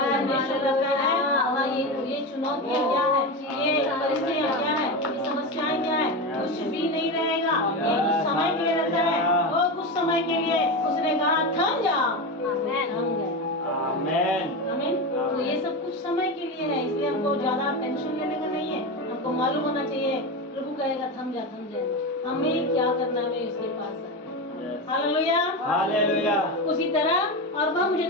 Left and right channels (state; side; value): normal; both; correlation 0.19